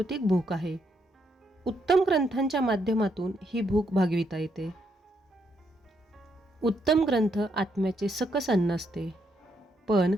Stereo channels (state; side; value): normal; both; correlation 0.77